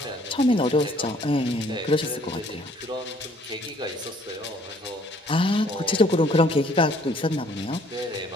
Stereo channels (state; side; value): normal; both; correlation 0.60